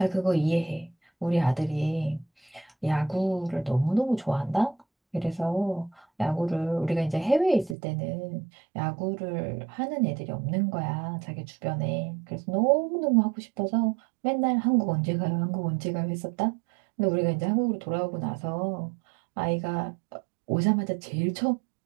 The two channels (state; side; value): drops out; left; at 7.8 s